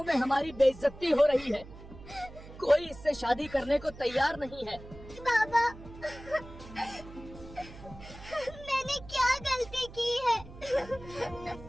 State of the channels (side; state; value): right; noise; hum, 16 dB below the sound